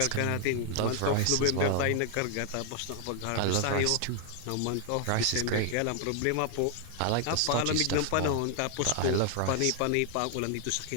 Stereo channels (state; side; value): different; both; correlation 0.00